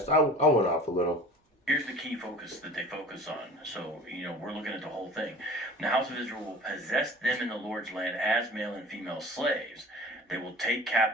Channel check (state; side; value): normal; both; correlation 0.42